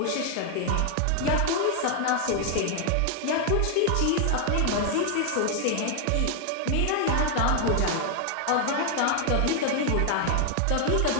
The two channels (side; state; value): both; different; correlation 0.00